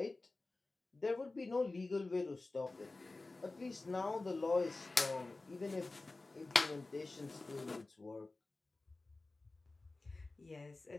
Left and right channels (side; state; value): right; quieter; 3.3 dB